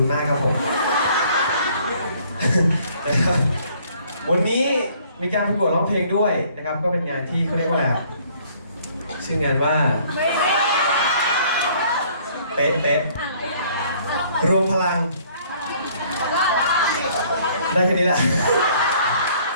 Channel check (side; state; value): both; inverted; correlation -0.60